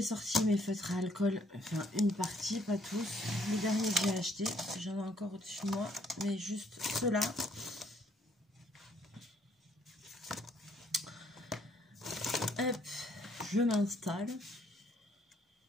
sorti mes feutres à alcool, enfin une partie, pas tous. Les derniers que j'ai achetés, j'en ai encore au-dessus de moi, mais juste ceux-là. Hop, je m'installe.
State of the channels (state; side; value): normal; both; correlation 0.67